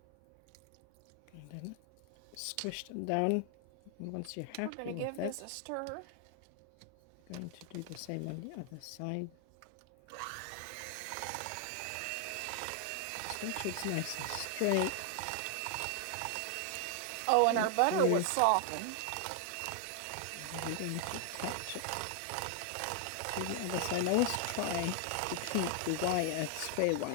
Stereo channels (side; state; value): both; different; correlation 0.00